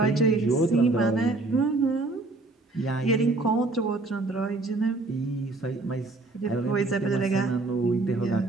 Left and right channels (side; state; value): left; quieter; 3.2 dB